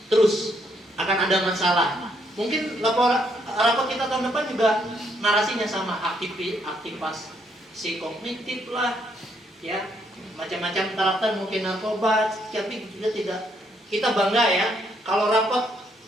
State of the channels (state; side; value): normal; both; correlation 0.72